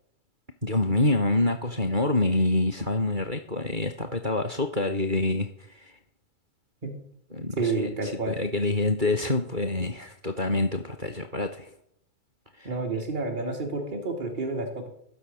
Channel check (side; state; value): left; late; 2.3 ms